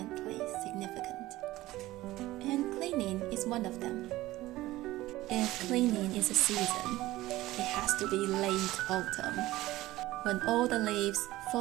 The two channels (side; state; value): left; quieter; 17.1 dB